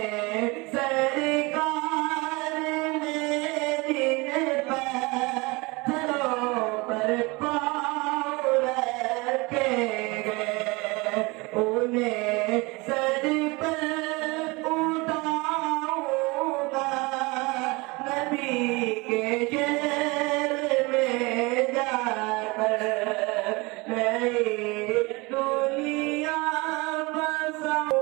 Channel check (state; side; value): quieter; left; 25.2 dB